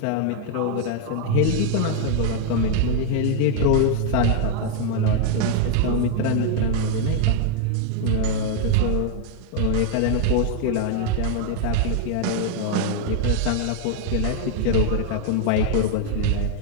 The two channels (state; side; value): different; both; correlation 0.00